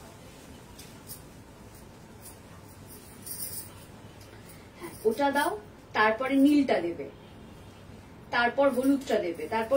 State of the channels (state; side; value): identical; both; correlation 1.00